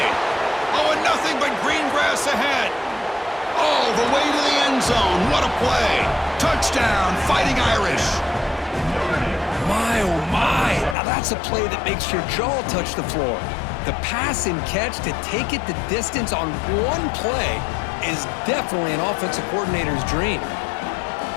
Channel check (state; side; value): drops out; right; at 11.0 s